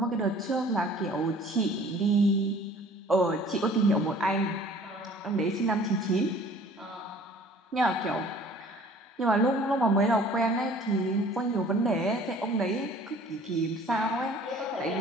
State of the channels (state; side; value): normal; both; correlation 0.51